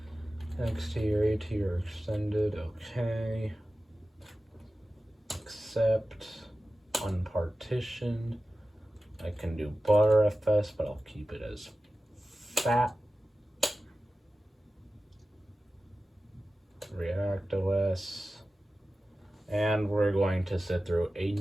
XT or AT or extended, okay. Accept, unpartitioned. I can do ButterFS, but I'll keep it as fat. ReactOS. And we're going to sit through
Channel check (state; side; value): normal; both; correlation 0.95